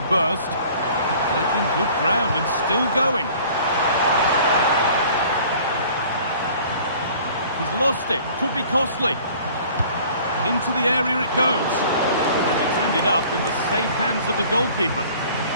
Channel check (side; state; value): both; inverted; correlation -0.50